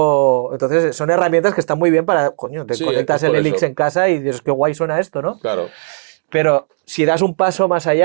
Entonces, son herramientas que están muy bien para, coño, te Sí, es conectas el por Helix eso. en casa y dices, qué guay suena esto, ¿no? Claro. Pero si das un paso más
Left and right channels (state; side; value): silent; left; digital silence